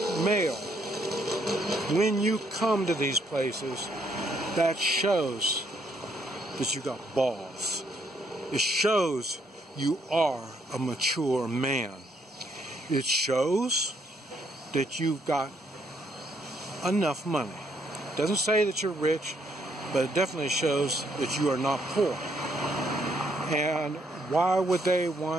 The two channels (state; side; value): normal; both; correlation 0.71